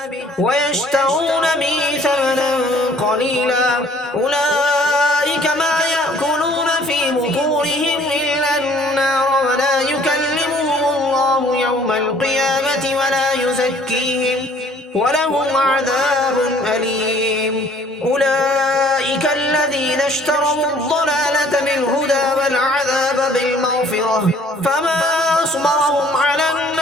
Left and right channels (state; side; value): normal; both; correlation 0.56